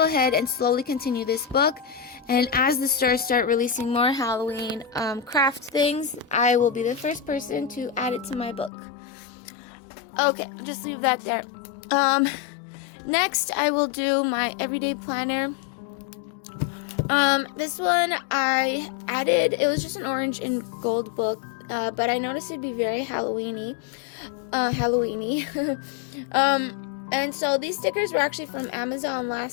ahead and slowly continue this book. And as the stores start releasing more Halloween craft things, I will be the first person to add it to my book. Okay, just leave that there. Next, I will do my everyday planner. This one I added, it was just an orange and gold book, but I noticed it'd be very Halloween-y. And so these stickers were actually from Amazon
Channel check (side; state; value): right; drops out; at 8.7 s